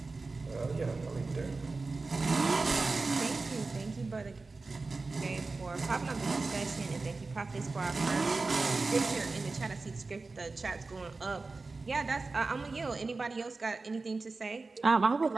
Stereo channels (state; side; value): quieter; left; 3.8 dB